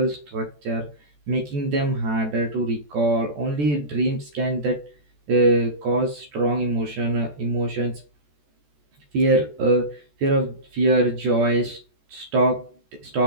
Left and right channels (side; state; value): left; late; 14 ms